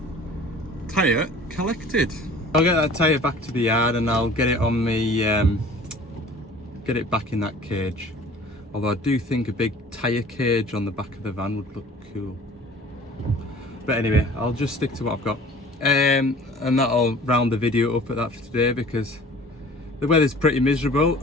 Tyre collected. I'll get that tyre back to the yard and I'll get it on me, get it back in that cage. Although I do think a big tyre cage on the back of the van would look cool. But anyway, I'll just stick to what I've got. And that'll round the video up at that for today, because the weather's pretty miserable.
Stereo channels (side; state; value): both; normal; correlation 0.47